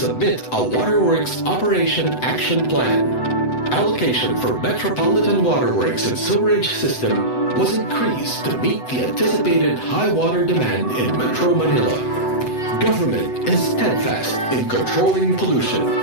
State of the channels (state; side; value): late; right; 8.0 ms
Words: a Waterworks Operation Action Plan. Allocation for Metropolitan Waterworks and Sewerage System was increased to meet the anticipated high water demand in Metro Manila. Government is steadfast in controlling pollution.